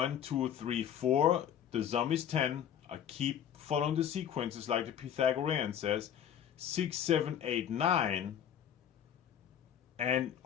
2, 3, 4. The sum is 10. I keep following the sequences like the Pythagorean says. 6, 7, 8, 9. And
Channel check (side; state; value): right; quieter; 9.5 dB